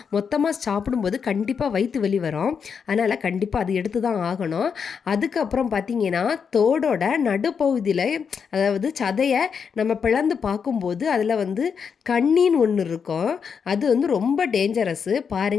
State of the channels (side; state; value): right; quieter; 6.5 dB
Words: மொத்தமாக சாப்பிடும்போது கண்டிப்பாக வயிற்று வலி வரும். அதனால் கண்டிப்பாக அது எடுத்து தான் ஆகணும். அதுக்கப்புறம் பார்த்தீங்கன்னா தோடோட நடுப்பகுதியில் அதாவது சதையை நம்ம பிளந்து பார்க்கும்போது அதில் வந்து கண்ணின்னு ஒன்று இருக்கும். அது வந்து ரொம்ப டேஞ்சரஸ்ஸு.